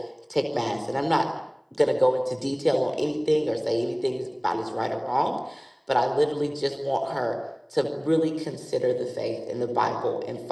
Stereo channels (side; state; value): both; identical; correlation 1.00